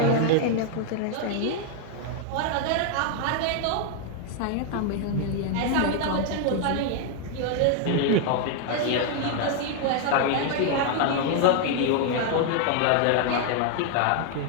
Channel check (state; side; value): different; both; correlation 0.00